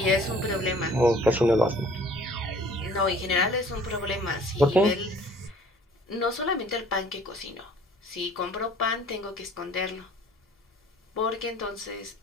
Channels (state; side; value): normal; both; correlation 0.53